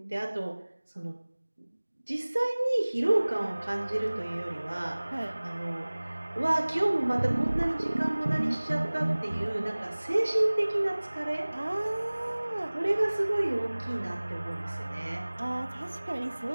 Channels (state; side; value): inverted; both; correlation -1.00